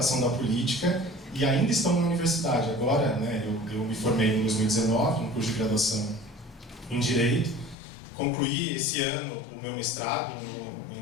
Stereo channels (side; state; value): right; drops out; at 7.8 s